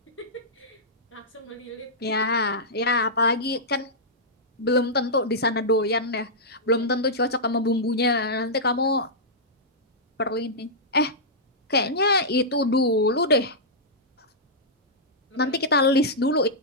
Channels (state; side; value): normal; both; correlation -0.11